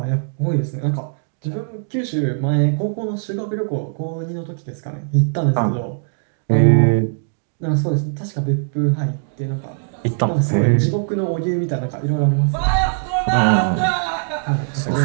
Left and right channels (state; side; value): silent; left; digital silence